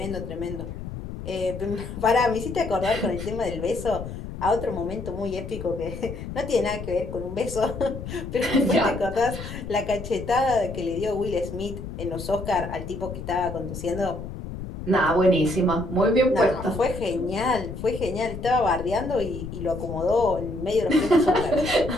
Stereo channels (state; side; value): noise; left; rumble, 9 dB below the sound